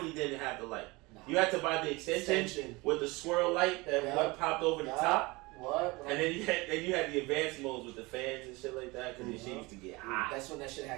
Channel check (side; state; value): left; quieter; 23.8 dB